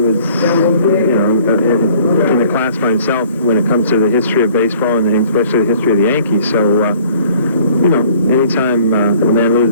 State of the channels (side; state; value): both; inverted; correlation -0.55